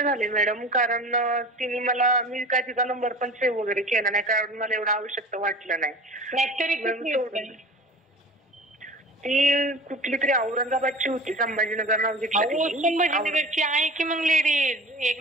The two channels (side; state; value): both; normal; correlation 0.39